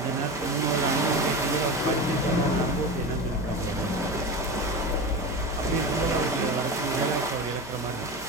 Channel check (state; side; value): normal; both; correlation 0.25